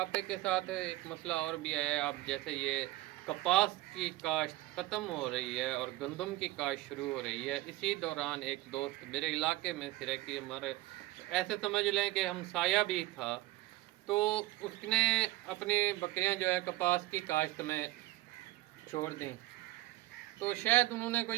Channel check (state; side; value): quieter; left; 18.0 dB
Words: के साथ एक मसला और भी है। आप जैसे ये कपास की काश्त ख़त्म हो रही है और गंदम की काश्त शुरू हो रही है, इसी दौरान एक दोस्त मेरे इलाके में सिरे की हमारे ऐसे समझ लें कि हमसाया भी था, तो उसने अपनी बकरियां जो है कपास की काश्त में छोड़ दी। तो शायद उन्होंने